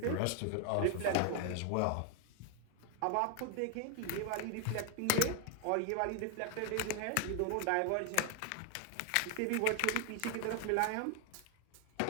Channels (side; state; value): both; different; correlation 0.01